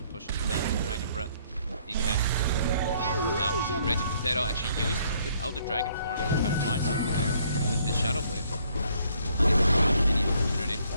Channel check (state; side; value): inverted; both; correlation -0.65